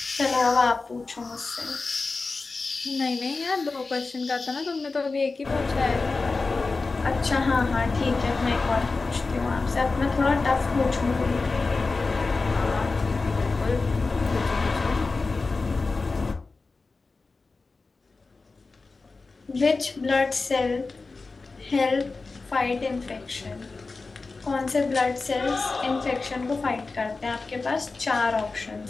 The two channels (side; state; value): right; quieter; 3.9 dB